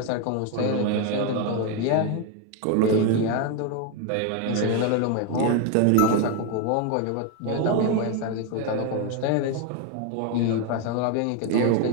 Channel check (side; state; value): both; different; correlation 0.02